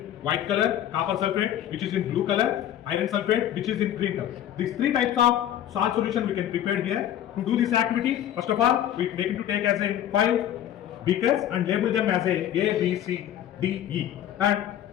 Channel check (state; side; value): quieter; right; 11.2 dB